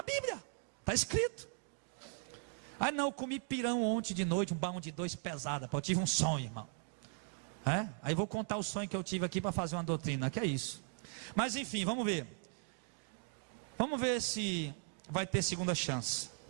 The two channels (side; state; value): left; silent; 52 dB below the other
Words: Bíblia, está escrito. Ah não, eu comi pirão ontem de noite, um balão de 2 pesada, eu tive um sonho, irmão. Aí vou contar o sonho que eu tive aqui para fazer uma doutrina, que é isso. Mas enfim, vamos ver. Vamos ver se vai ter segunda chance.